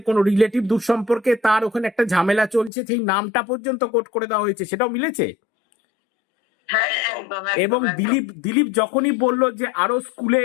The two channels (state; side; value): drops out; right; at 2.7 s